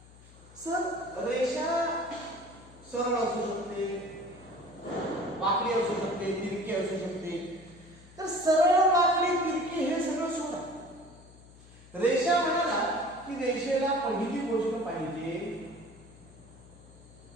सर रेषा सरळ असू शकते, वाकडी असू शकते, तिरकी असू शकते. तर सरळ, वाकडी, तिरकी हे सगळं सोडा. रेषा म्हणाला की रेषेला पहिली गोष्ट पाहिजे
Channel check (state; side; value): noise; left; hum, 22 dB below the sound